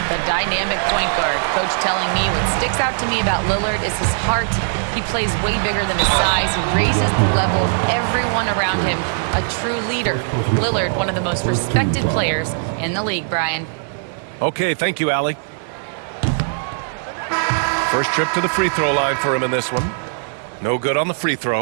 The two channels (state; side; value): silent; left; digital silence